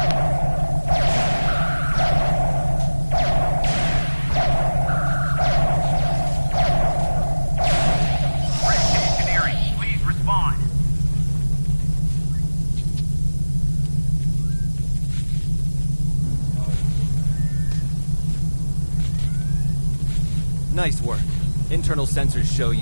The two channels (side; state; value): both; inverted; correlation -1.00